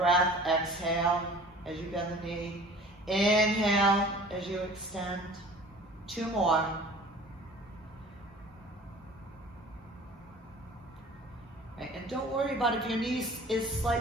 exhale as you bend the knee. Inhale as you extend. 2 more. Right, and don't worry about if your knee is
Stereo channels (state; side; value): normal; both; correlation 0.46